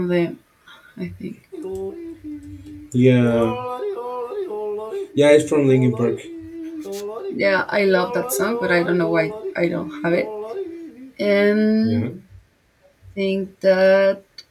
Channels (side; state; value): both; identical; correlation 1.00